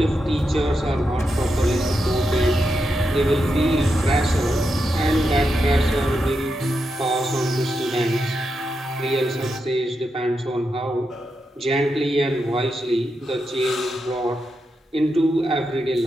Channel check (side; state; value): both; normal; correlation 0.86